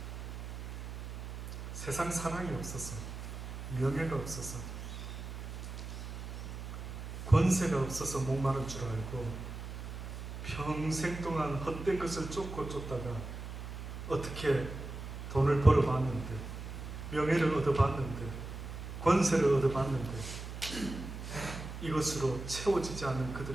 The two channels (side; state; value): right; noise; hum, 8 dB below the sound